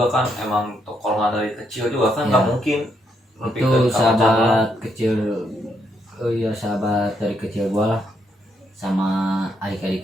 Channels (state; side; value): normal; both; correlation 0.76